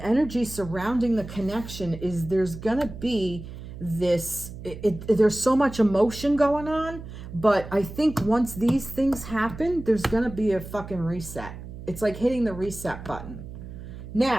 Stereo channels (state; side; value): noise; right; hum, 12 dB below the sound